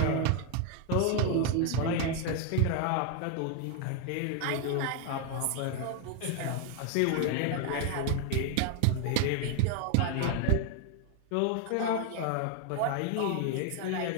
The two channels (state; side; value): different; both; correlation 0.00